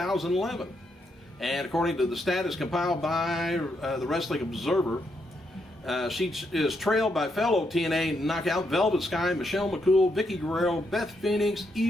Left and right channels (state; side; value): normal; both; correlation 0.79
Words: And according to the status compiled by the Wrestling Observer, she is trailed by fellow TNA knockout Velvet Sky, Michelle McCool, Vicky Guerrero, Beth Phoenix,